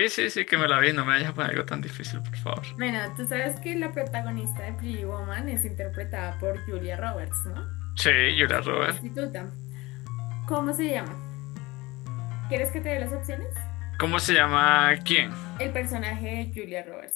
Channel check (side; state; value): right; quieter; 21.5 dB